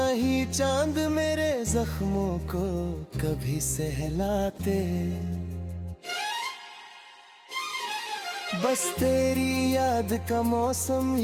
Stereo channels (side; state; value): both; identical; correlation 1.00